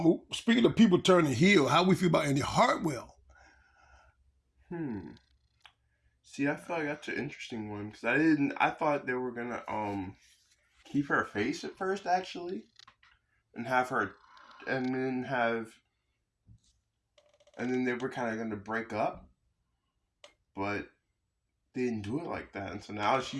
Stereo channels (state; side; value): identical; both; correlation 1.00